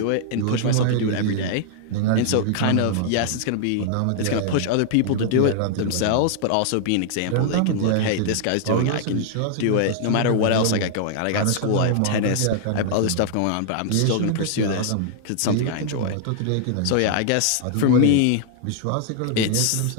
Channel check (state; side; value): different; both; correlation -0.01